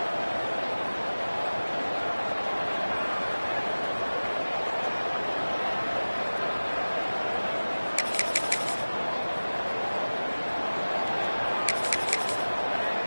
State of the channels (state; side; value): inverted; both; correlation -1.00